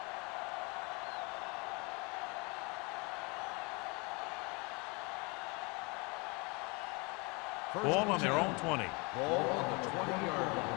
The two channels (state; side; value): quieter; right; 29.1 dB